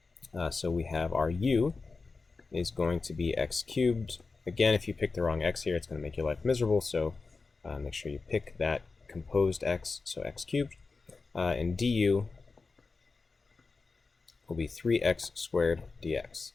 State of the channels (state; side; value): quieter; right; 4.2 dB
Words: So we have our u is going to be x cubed. Again, if you pick the wrong x here, it's going to make your life miserable, so make sure you pick that composed x, so x cubed. And du will be 3x squared dx.